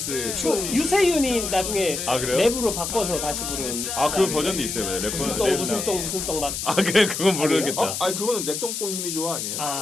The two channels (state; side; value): noise; left; hiss, 4 dB below the sound